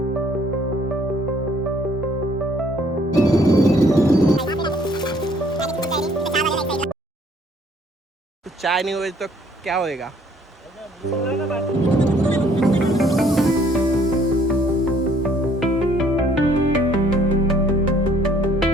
चाय नहीं हुई तो क्या होएगा?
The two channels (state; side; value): normal; both; correlation 0.61